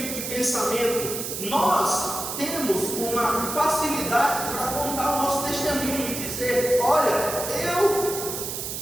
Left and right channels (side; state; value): right; noise; hiss, 5 dB below the sound